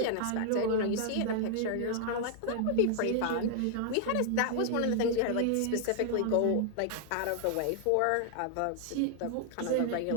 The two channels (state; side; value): different; both; correlation 0.00